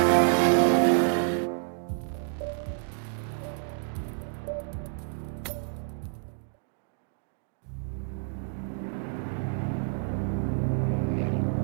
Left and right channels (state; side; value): silent; left; digital silence